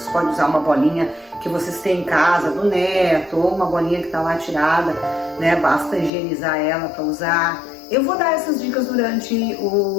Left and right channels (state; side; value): drops out; right; at 6.1 s